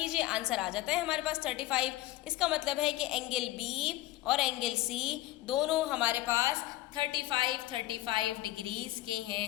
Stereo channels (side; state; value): right; quieter; 16.4 dB